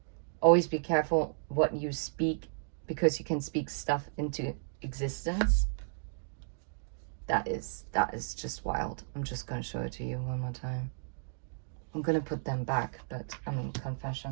Always be careful what you speak, because you can speak stuff into existence. That is just wild. I'm just gonna show it to you one more time. I'm gonna put them back, but I mean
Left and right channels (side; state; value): left; silent; digital silence